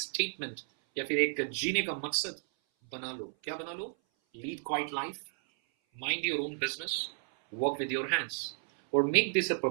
या फिर एक जीने का मकसद बना लो। क्या बना लो? Lead quiet life, mind your own business, work with your hands, और make this a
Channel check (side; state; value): left; silent; 56 dB below the other